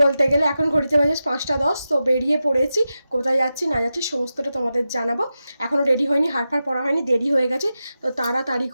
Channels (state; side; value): inverted; both; correlation -0.92